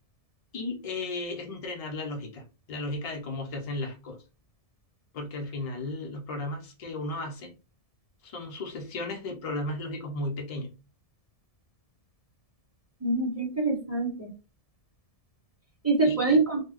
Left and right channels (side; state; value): right; late; 1.7 ms